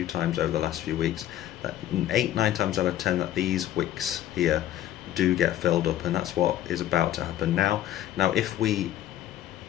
times over the last few weeks. That 8-9 times out of 10 that these wicks here do get filled up, and that's what is about to happen now. Now, if we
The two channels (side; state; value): right; quieter; 12.6 dB